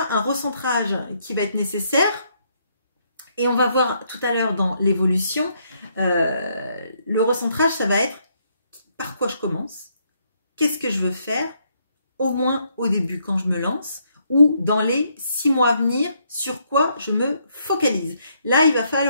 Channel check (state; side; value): inverted; both; correlation -0.73